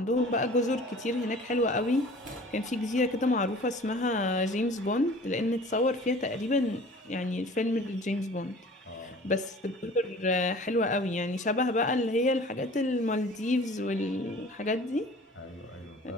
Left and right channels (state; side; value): normal; both; correlation 0.46